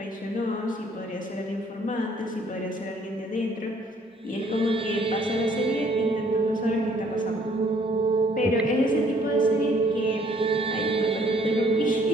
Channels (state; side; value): normal; both; correlation 0.62